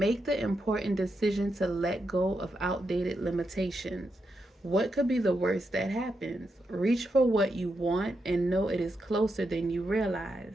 the important decision to let go of outdated limitations. What could be the worst that happens? Reach for what you want and know it is closer than you realize.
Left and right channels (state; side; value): normal; both; correlation 0.84